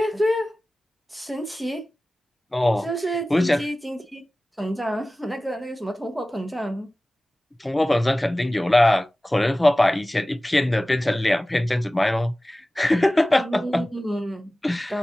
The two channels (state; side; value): normal; both; correlation 0.97